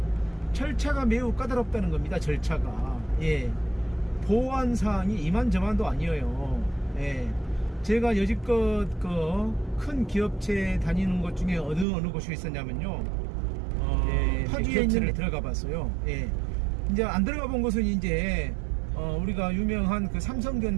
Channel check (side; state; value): left; drops out; at 11.9 s